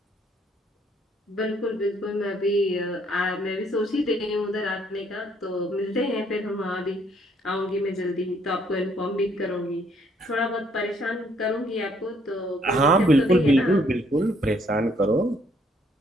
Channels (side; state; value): both; normal; correlation 0.66